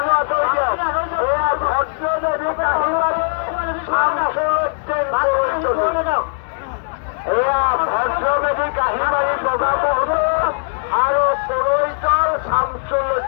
আঁতৰি দিয়ক। এয়া ভদ্ৰ নদীত আহিবাৰে এয়া ভদ্ৰ নদী কাহিবাৰী বগাবহতে আৰু পৰৈতৰ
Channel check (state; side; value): silent; right; 67 dB below the other